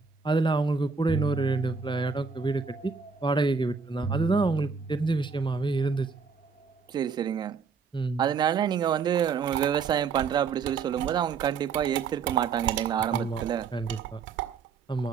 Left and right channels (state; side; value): quieter; left; 5.5 dB